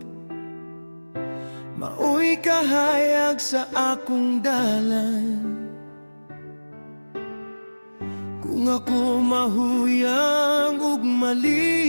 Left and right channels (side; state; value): both; inverted; correlation -1.00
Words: maoy kahayag sa akong dalan. Kung ako mahuyang ug